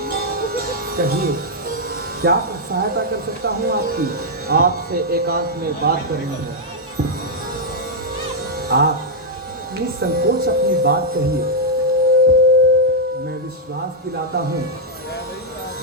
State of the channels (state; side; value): normal; both; correlation -0.05